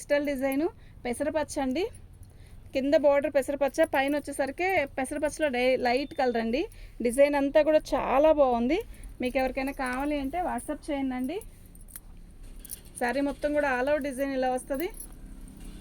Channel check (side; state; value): both; identical; correlation 1.00